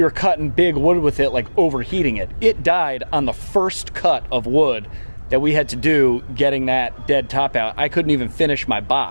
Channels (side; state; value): both; inverted; correlation -1.00